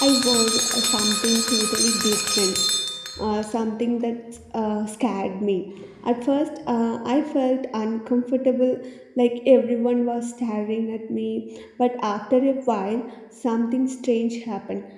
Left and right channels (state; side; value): identical; both; correlation 1.00